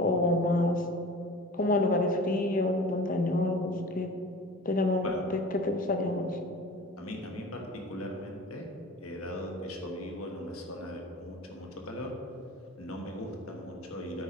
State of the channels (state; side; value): normal; both; correlation 0.39